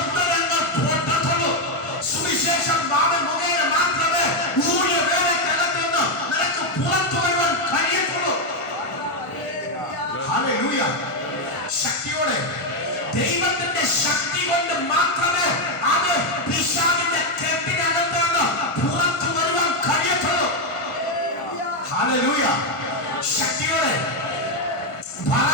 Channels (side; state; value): right; late; 1.5 ms